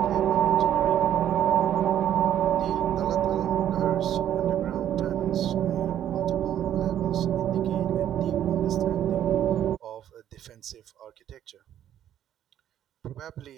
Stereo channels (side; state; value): left; quieter; 10.9 dB